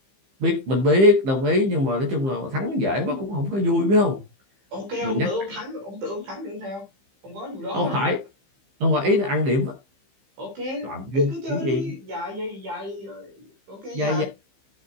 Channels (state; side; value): late; left; 15 ms